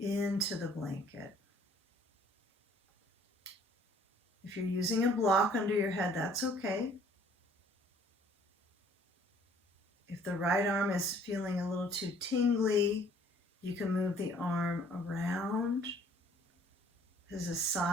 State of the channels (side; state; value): both; normal; correlation 0.57